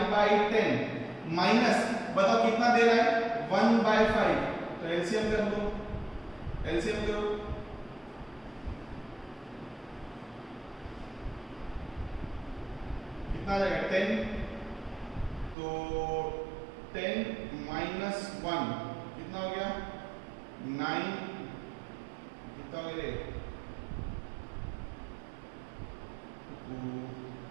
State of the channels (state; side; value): drops out; left; at 15.6 s